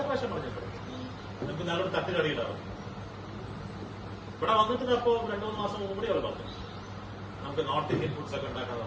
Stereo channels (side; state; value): both; identical; correlation 1.00